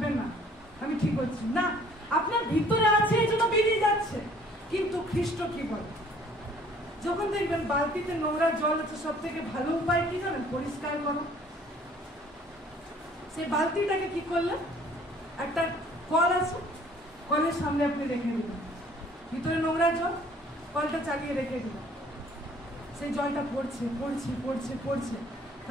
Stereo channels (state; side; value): normal; both; correlation 0.56